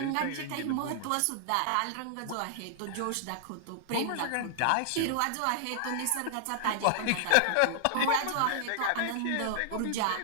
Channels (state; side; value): different; both; correlation -0.01